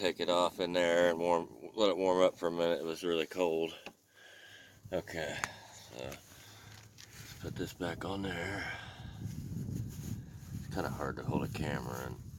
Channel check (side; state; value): both; identical; correlation 1.00